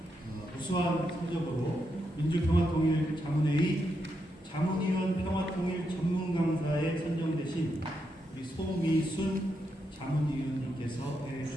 우수한 성적으로 민주평화통일 자문회의 자문위원 평화통일 전문 강사에 선정되신 우리 소미순 자문위원님께서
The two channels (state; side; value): normal; both; correlation 0.83